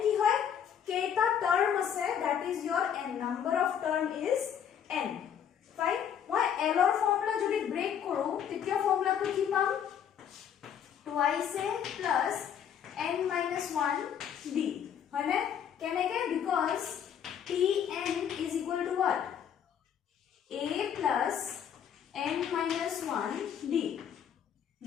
ki hoy keita term ase that is your n number of term is n fine মই l or formula যদি break করো তৃতীয় formula তো কি পাম twice a plus n minus 1 d হয়নে কেনেকে because tn is equal to what a plus n minus 1 d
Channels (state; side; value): quieter; right; 8.6 dB